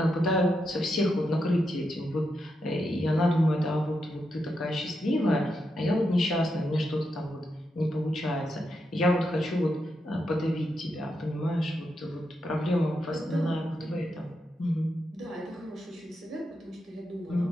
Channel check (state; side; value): normal; both; correlation 0.84